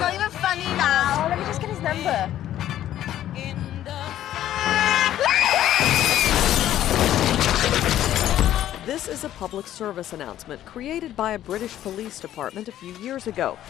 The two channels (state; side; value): quieter; right; 12.3 dB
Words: not even funny now. Oh, let me just get his number. This is a public service announcement created by a British police department a few years ago.